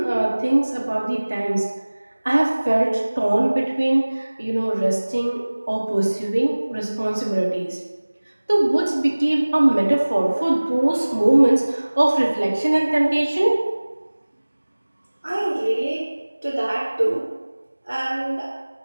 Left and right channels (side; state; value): both; inverted; correlation -1.00